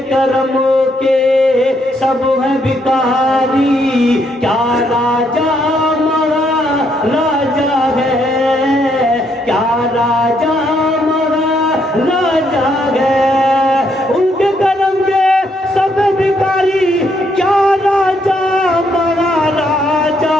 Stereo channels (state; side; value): normal; both; correlation 0.73